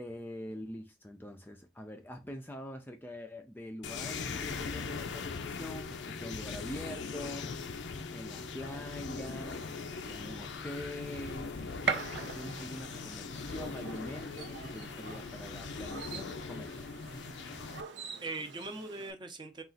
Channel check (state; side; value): normal; both; correlation 0.41